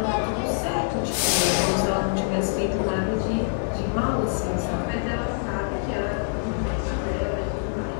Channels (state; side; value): silent; right; 56 dB below the other